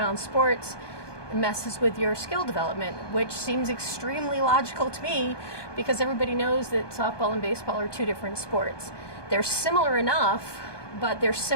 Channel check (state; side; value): late; right; 1.2 ms